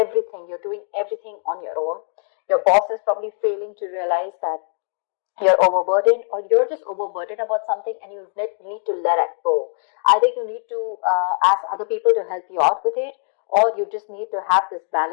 you're doing everything on your own. Your boss is probably failing to realize that you're overburdened, or you're just overburdened about something and you need to let it go. Either you need to ask other people to help you out with it, or you just need to have this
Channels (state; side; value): silent; right; digital silence